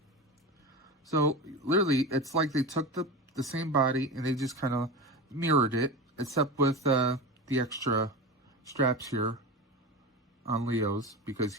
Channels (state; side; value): normal; both; correlation 0.26